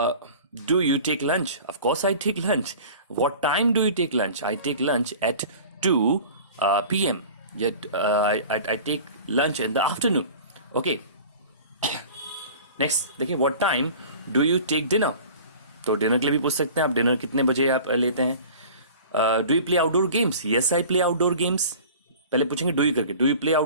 Do you take lunch? Of course I take lunch. What time do you take lunch? I take lunch at 2 p.m. Yet I take lunch in the afternoon. Okay. Next, देखिए what time do you take dinner? तो डिनर के लिए भी पूछ सकते हैं आप, डिनर कितने बजे आप लेते हैं। Do you play outdoor games? Yes I play outdoor games. पहले पूछेंगे डू यू करके, do you play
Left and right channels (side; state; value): both; inverted; correlation -0.41